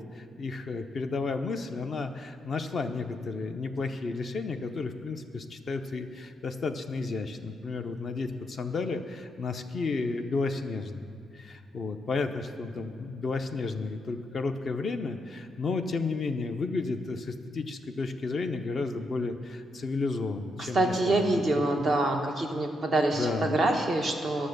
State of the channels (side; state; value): both; normal; correlation 0.79